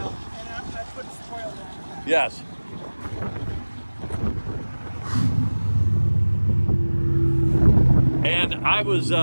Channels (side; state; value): both; inverted; correlation -1.00